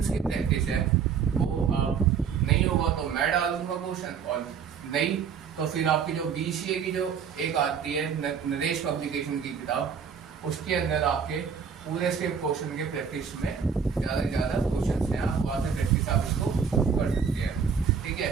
की प्रैक्टिस है वो आप नहीं होगा तो मैं डाल दूंगा क्वेश्चन, और नहीं तो फिर आपकी जो बीसीए की जो एक आती है नरेश पब्लिकेशन की किताब, उसके अंदर आपके पूरे से क्वेश्चन के प्रैक्टिस में ज़्यादा से ज़्यादा क्वेश्चन हैं, आप वहाँ से प्रैक्टिस आप इसको कर सकते हैं, ठीक है।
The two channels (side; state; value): left; quieter; 6.7 dB